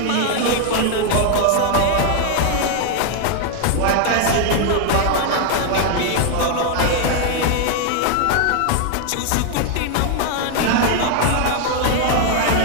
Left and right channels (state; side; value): different; both; correlation 0.00